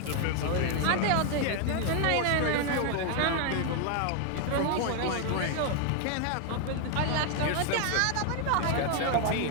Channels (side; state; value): both; different; correlation 0.00